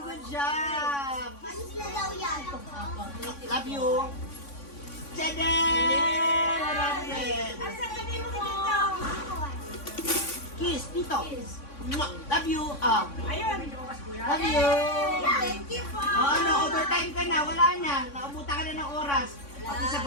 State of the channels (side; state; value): right; late; 3.6 ms